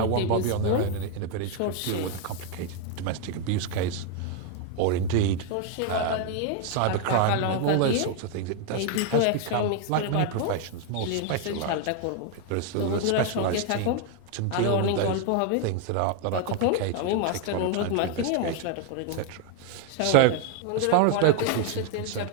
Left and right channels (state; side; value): different; both; correlation 0.01